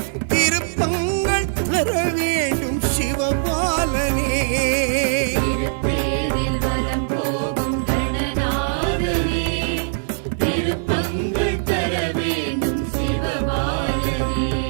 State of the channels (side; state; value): left; silent; digital silence